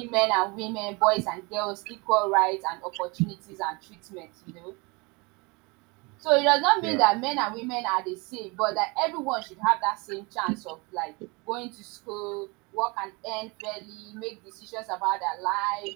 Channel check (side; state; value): left; quieter; 27.6 dB